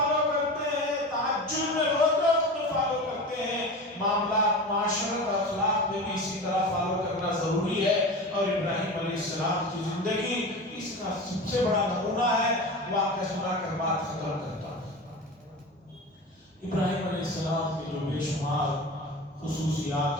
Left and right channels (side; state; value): both; normal; correlation 0.30